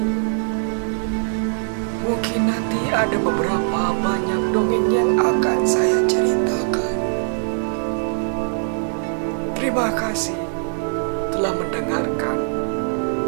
Mungkin nanti ada beberapa banyak dongeng yang akan saya ceritakan. Terima kasih telah mendengarkan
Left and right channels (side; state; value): left; silent; digital silence